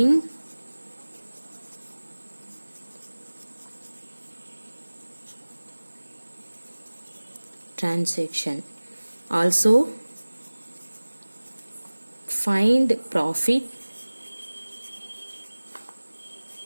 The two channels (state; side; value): inverted; both; correlation -1.00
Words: transaction. Also find profit